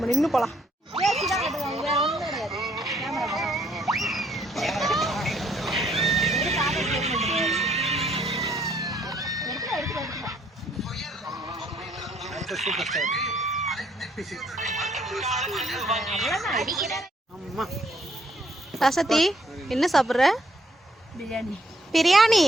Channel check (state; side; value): normal; both; correlation 0.68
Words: நின்று போலாம். ரசதி என்ன சாப்பிட்ற? பிரியாணி. பிரியாணி